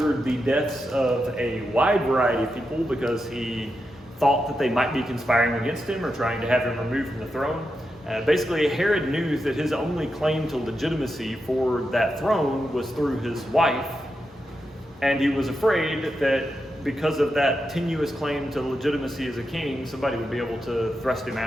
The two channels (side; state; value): both; normal; correlation 0.87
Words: the deaths of a wide variety of people because he thought that they might be conspiring against him or trying to have him removed from the throne. Basically, Herod knew that his only claim to legitimacy for that throne was through his wife, and he was afraid that because of that tenuous claim to legitimacy as a king, somebody would be able to thrust him